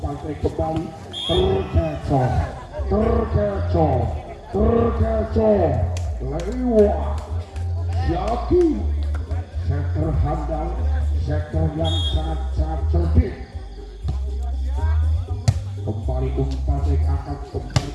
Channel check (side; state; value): both; identical; correlation 1.00